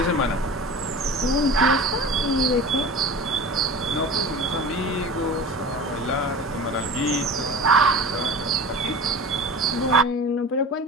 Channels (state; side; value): normal; both; correlation 0.35